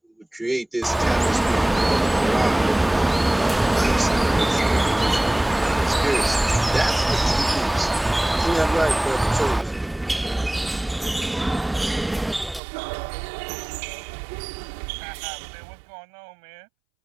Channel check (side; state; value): left; drops out; at 12.6 s